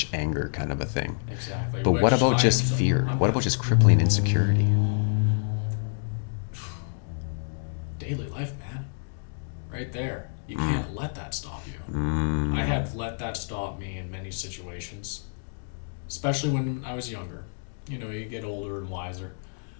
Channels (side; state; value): right; silent; digital silence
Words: anger kind of a thing. Exactly. But what about just fear? What about just crippling insecurity? Daily life, man. Right there. You can't let that stop you. I have let that stop me in many situations, especially when I was younger. You know, you get older and wiser.